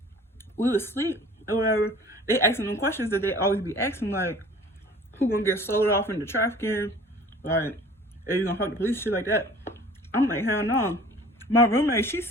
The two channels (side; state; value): both; normal; correlation 0.47